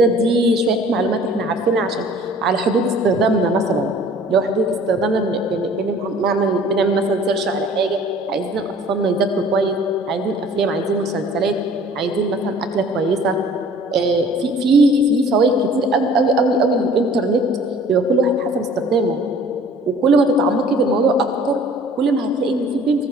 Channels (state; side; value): normal; both; correlation 0.51